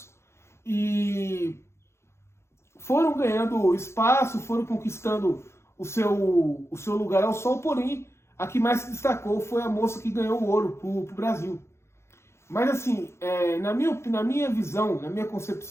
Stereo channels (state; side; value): late; right; 0.13 ms